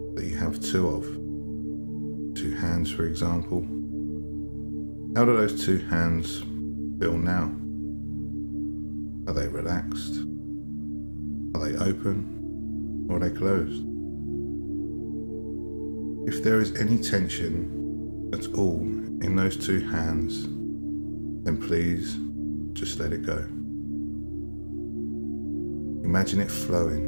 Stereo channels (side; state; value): both; inverted; correlation -1.00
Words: that you have 2 of. 2 hands, for example. How do those 2 hands feel now? Are they relaxed? Are they open? Or are they closed? If there is any tension at all in those 2 hands, then please just let it go. Imagine it